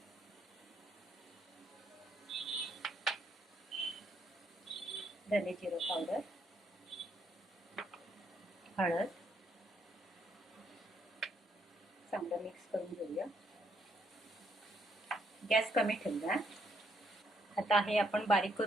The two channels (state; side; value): normal; both; correlation 0.73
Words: धने जिरं पावडर, हळद. चांगलं मिक्स करून घेऊया. गॅस कमी ठेवूया. आता हे आपण बारीक